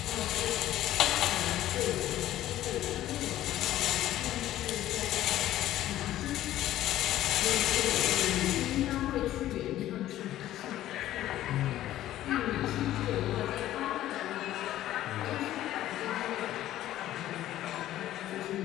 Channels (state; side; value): quieter; right; 13.7 dB